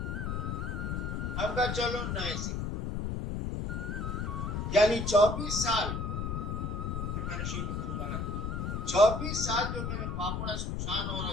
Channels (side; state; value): left; noise; rumble, 2 dB below the sound